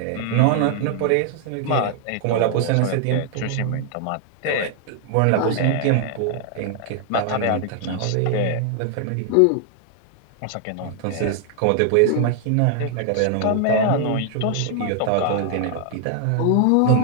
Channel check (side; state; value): both; different; correlation 0.00